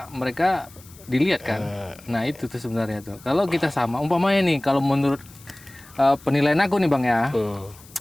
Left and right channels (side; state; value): left; noise; hiss, 23 dB below the sound